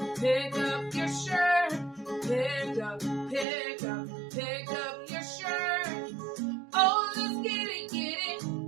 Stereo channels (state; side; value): drops out; left; at 3.5 s